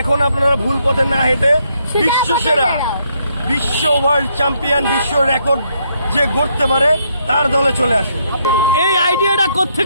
এখন আপনারা ভুল পথে না হেঁটে বিশ্বসেরা, বিশ্ব ওয়ার্ল্ড চ্যাম্পিয়ন, বিশ্ব রেকর্ড যে গড়তে পারে তার দলে চলে আসুন। এই আইডিয়াটা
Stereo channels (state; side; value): inverted; both; correlation -0.74